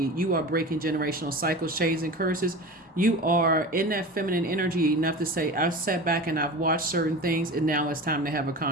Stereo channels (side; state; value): both; normal; correlation 0.32